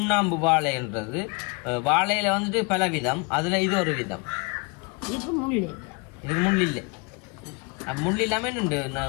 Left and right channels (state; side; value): quieter; right; 31.0 dB